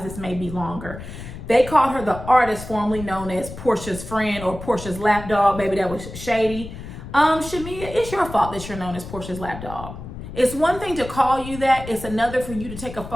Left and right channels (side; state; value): left; noise; rumble, 11 dB below the sound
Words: This may be longer. They called her the artist formerly known as Porsha's friend or Porsha's lapdog. Baby, that was shady. Shamea, it's your fault that you're known as Porsha's lapdog. It's one thing to call you that. It's another for you to take a